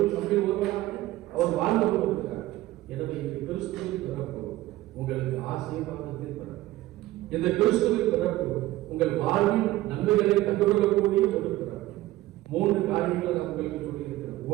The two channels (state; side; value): quieter; left; 16.5 dB